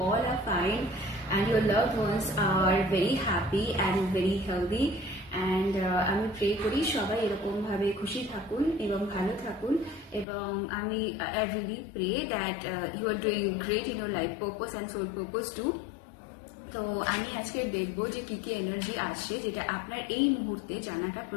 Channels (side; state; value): right; drops out; at 10.2 s